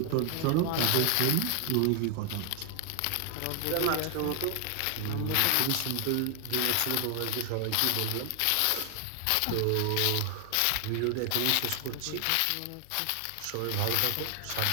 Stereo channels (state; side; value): different; both; correlation 0.00